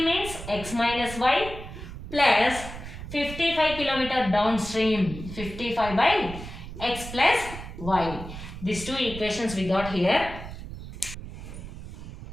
means x minus y plus 55 kilometer downstream. 55 by x plus y. These two equations we got here.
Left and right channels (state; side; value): noise; right; rumble, 11 dB below the sound